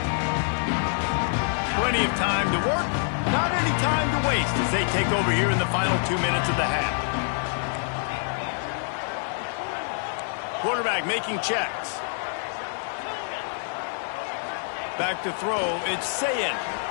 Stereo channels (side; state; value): right; silent; 61 dB below the other